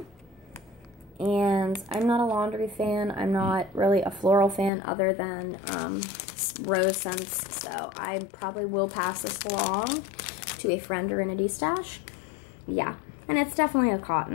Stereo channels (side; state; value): right; drops out; at 4.7 s